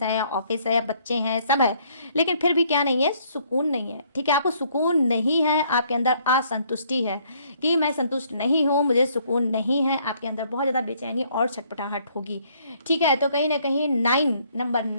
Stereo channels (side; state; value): both; inverted; correlation -0.65